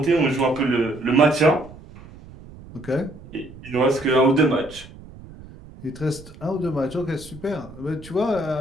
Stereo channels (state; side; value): noise; right; rumble, 18 dB below the sound